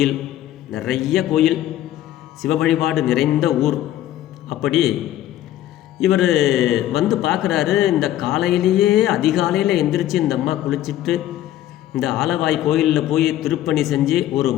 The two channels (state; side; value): quieter; right; 13.0 dB